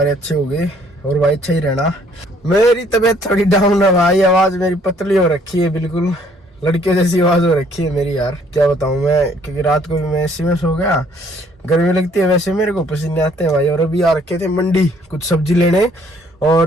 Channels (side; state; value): both; normal; correlation 0.62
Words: अच्छे होंगे और भाई अच्छा ही रहना। मेरी तबीयत थोड़ी डाउन है भाई, आवाज मेरी पतली हो रखी है, बिल्कुल लड़के जैसी आवाज हो रखी है मेरी यार। क्या बताऊं मैं, क्योंकि रात को भी मैं एसी में सो गया, गर्मी लगती है वैसे मेरे को, पसीने आते हैं भाई। और अभी आ रखे थे मंडी कुछ सब्जी लेने,